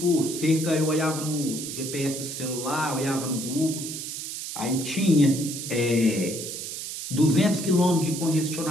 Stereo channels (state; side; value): noise; right; hiss, 7 dB below the sound